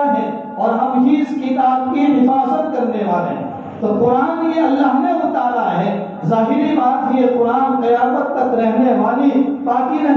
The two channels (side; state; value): both; identical; correlation 1.00